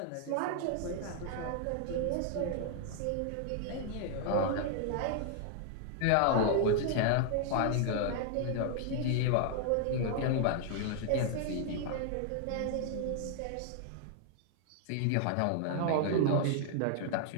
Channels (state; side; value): different; both; correlation 0.00